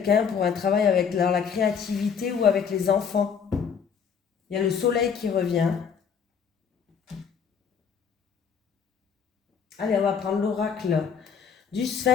pour un travail avec la créativité ou avec les enfants. Il y a le soleil qui revient. Allez, on va prendre l'oracle du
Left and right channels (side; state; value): right; quieter; 6.8 dB